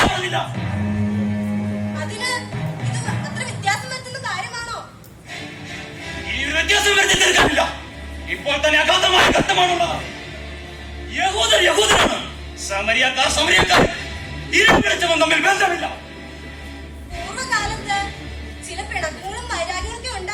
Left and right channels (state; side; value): identical; both; correlation 1.00